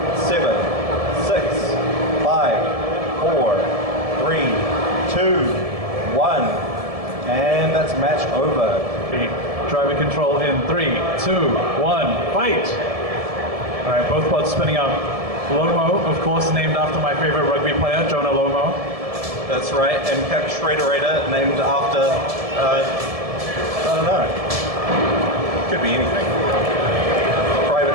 7, 6, 5, 4, 3, 2, 1. And that's match over. Driver control in 3, 2, 1, fight! Alright, both bots spinning up. Lomo, of course, named after my favorite rugby player, Jonah Lomo. That's right, and Cap Shredderator, named after, I don't know. Could be anything.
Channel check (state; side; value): late; left; 1.7 ms